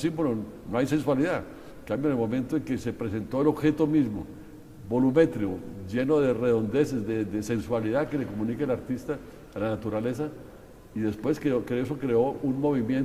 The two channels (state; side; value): identical; both; correlation 1.00